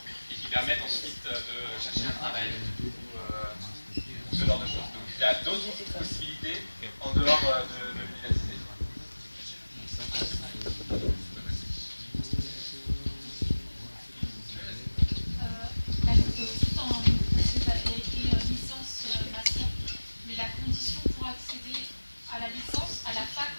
et qui permettent ensuite de chercher un travail ou ce genre de choses. Donc il y a d'autres possibilités en dehors de l'université.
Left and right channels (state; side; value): inverted; both; correlation -1.00